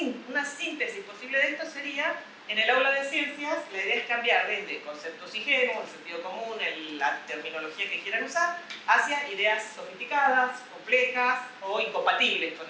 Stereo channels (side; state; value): both; identical; correlation 1.00